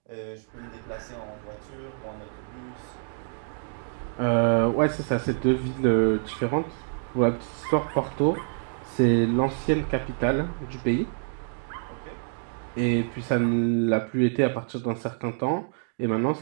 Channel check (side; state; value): left; silent; digital silence